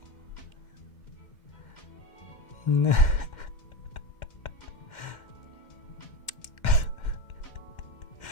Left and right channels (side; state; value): right; late; 2.1 ms